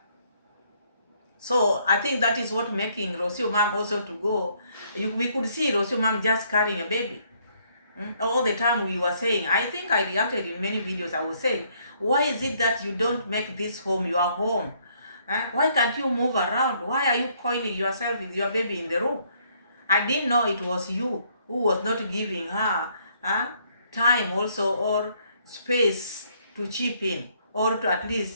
So I think that is what making Rocio Mom also to go. We could see Rocio Mom just carrying a baby. All the time we were saying, I think I reacted in many videos, I was saying, why is it that you don't make this home your home? Why can't you move around? Why are you coiling yourself with your baby in the room? I didn't know it was you who was not giving her time also, or space to chip in, or to at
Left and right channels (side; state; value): both; inverted; correlation -0.67